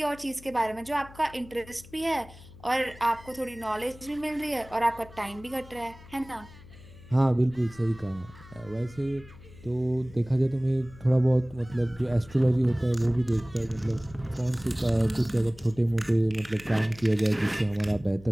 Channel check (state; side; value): noise; left; hum, 20 dB below the sound